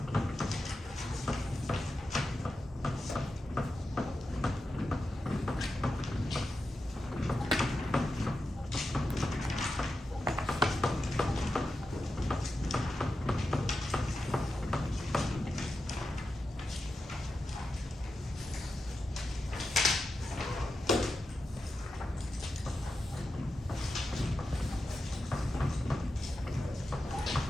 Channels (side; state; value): both; normal; correlation 0.90